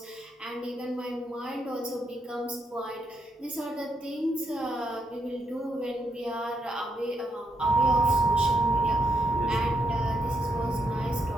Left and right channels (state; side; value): normal; both; correlation 0.78